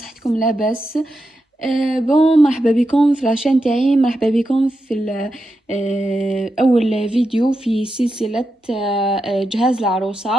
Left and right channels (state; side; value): normal; both; correlation 0.88